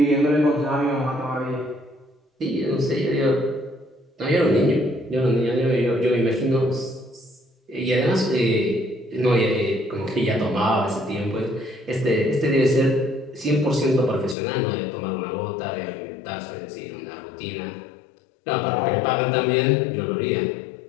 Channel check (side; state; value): right; drops out; at 14.4 s